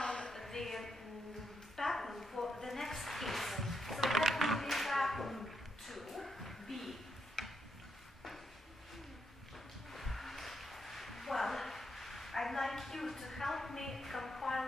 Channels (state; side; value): normal; both; correlation 0.81